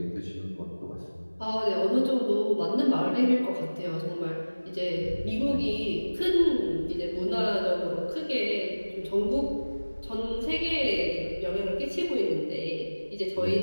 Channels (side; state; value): both; inverted; correlation -1.00